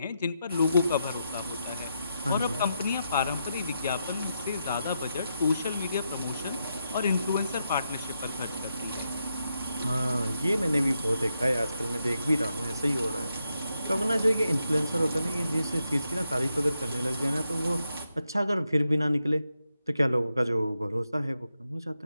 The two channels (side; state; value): both; inverted; correlation -0.83